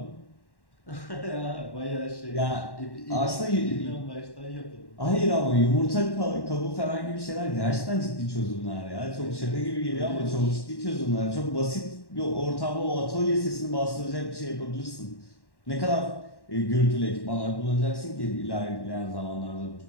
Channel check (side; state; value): right; late; 1.1 ms